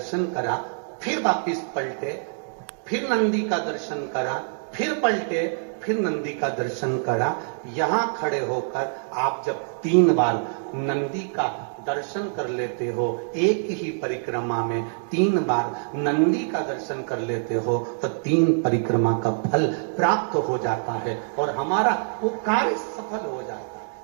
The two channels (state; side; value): silent; left; digital silence